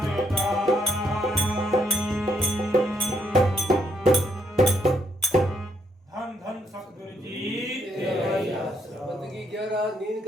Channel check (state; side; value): normal; both; correlation 0.74